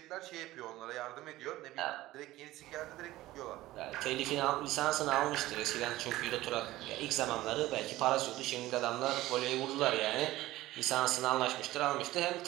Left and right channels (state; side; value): quieter; left; 16.7 dB